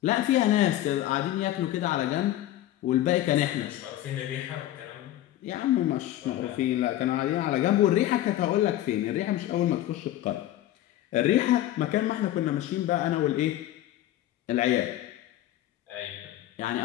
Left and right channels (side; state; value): right; quieter; 13.8 dB